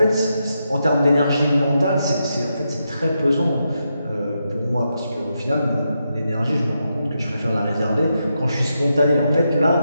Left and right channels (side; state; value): both; inverted; correlation -0.84